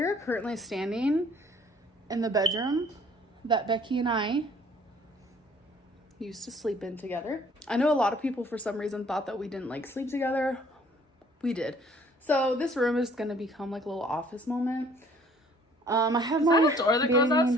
currently standing in the bedroom that Becky and I used to sleep in together. I know a lot of people for some reason thought that we didn't like sleep together. We did. So this room is gonna become like a little office moment. I have my door that goes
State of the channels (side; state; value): both; normal; correlation 0.57